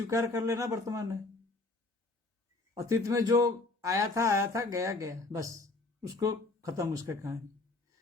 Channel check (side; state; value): right; quieter; 3.2 dB